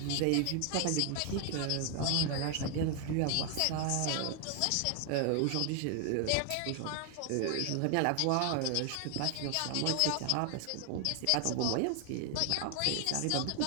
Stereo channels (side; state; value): both; different; correlation 0.00